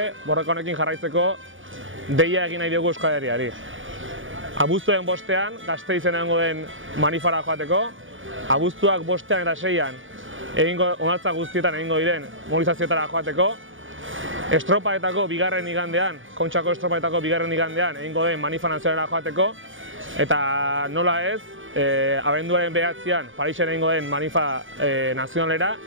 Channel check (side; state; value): left; late; 0.57 ms